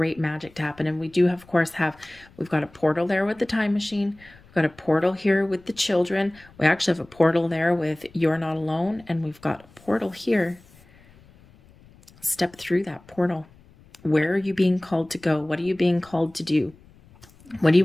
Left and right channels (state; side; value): noise; left; rumble, 26 dB below the sound